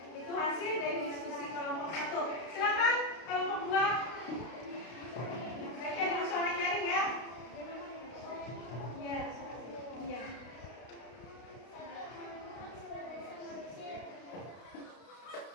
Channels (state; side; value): late; right; 32 ms